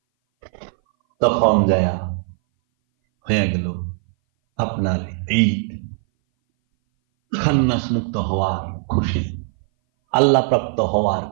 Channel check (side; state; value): left; silent; 60 dB below the other